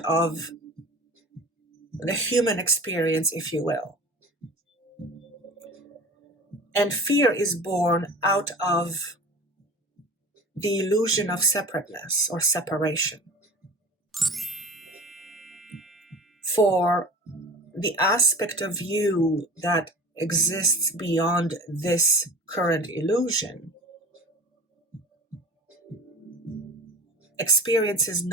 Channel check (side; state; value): both; normal; correlation 0.38